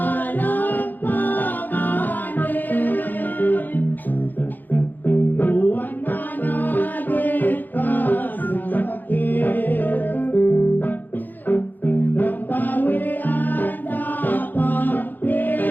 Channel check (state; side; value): late; right; 0.086 ms